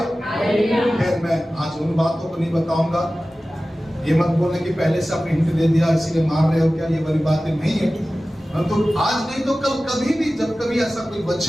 खैर मैं आज उन बातों को नहीं बताऊंगा। ये मत बोलने कि पहले से आपने हिंट दे दिया इसीलिए मार रहे हो, क्या ये वाली बातें नहीं है। तो आज नहीं तो कल कभी भी, जब कभी ऐसा कोई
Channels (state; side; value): normal; both; correlation 0.96